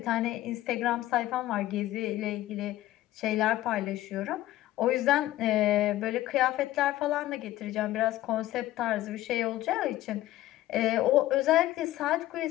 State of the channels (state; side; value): quieter; right; 15.3 dB